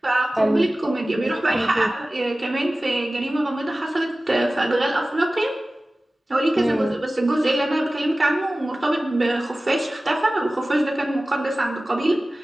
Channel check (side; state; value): both; normal; correlation 0.97